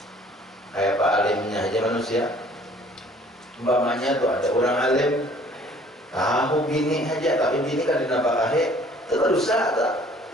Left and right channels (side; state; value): both; normal; correlation 0.55